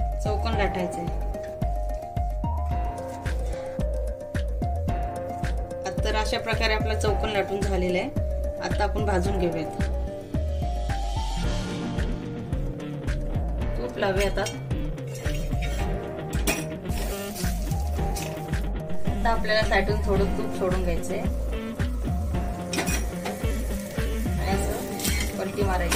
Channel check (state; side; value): identical; both; correlation 1.00